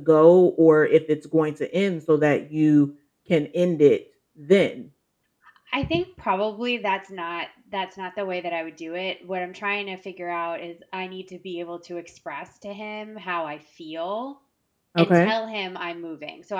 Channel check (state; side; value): identical; both; correlation 1.00